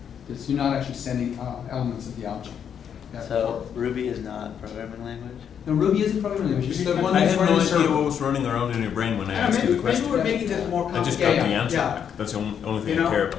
you're not actually sending elements of the object. So Ruby is not a programming language? No, Ruby is a programming language. It's the one I that's had no running the idea server. what was running around in your brain when I asked you the Maybe question. we're making this more I just complicated. got the answer Yeah. back. That's the only thing You know, I care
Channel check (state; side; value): quieter; right; 8.2 dB